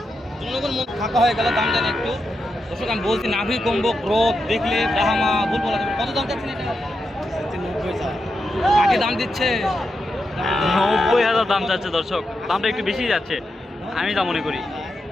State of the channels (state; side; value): normal; both; correlation 0.86